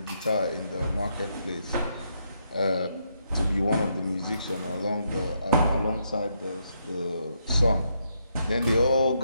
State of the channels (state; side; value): inverted; both; correlation -0.78